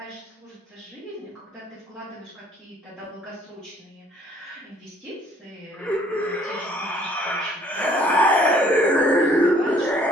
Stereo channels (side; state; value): both; normal; correlation 0.59